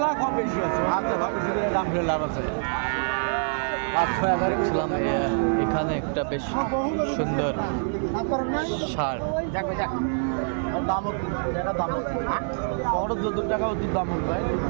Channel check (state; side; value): silent; left; digital silence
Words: কম বেশি আছে। আচ্ছা ভাই, দাম ফেলে লাভ আছে। দেখছিলাম এখানে একটা বেশ সুন্দর ষাঁড়। দাম দাম বড় 14 টাকা ওদের দাম ভাই,